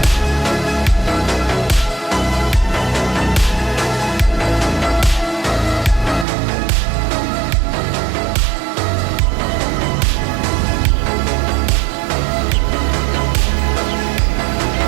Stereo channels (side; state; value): left; drops out; at 6.2 s